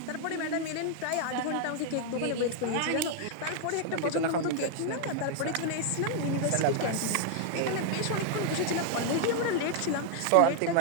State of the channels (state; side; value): different; both; correlation 0.00